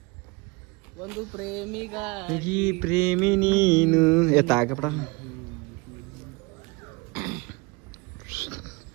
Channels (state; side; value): quieter; left; 25.9 dB